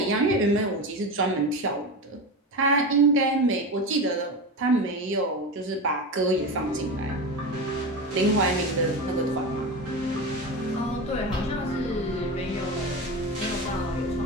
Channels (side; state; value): both; normal; correlation 0.23